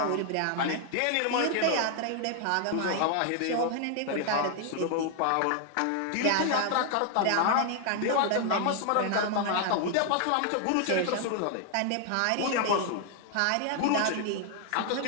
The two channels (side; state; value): both; different; correlation 0.00